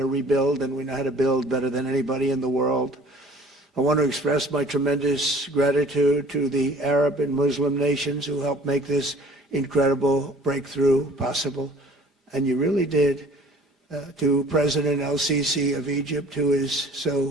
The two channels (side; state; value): both; normal; correlation 0.50